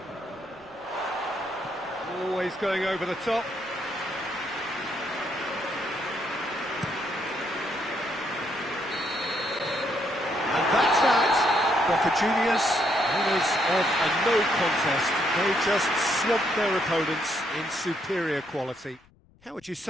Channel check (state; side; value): noise; left; rumble, 30 dB below the sound